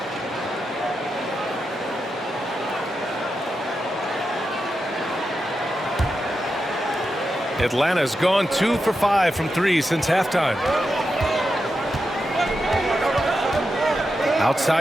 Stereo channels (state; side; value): normal; both; correlation 0.88